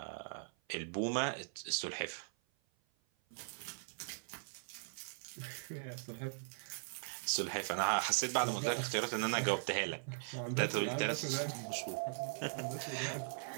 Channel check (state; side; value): silent; left; 51 dB below the other